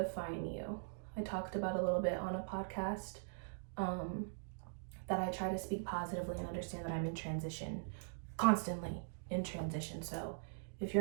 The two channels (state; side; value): silent; left; digital silence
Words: you. I talked about a little bit on a podcast that I try to speak positively and understand that I'm in transition, constantly in transition. So if